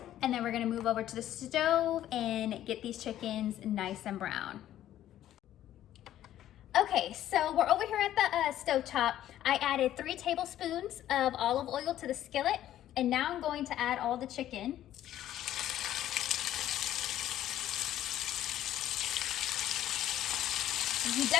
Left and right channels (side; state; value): right; quieter; 12.4 dB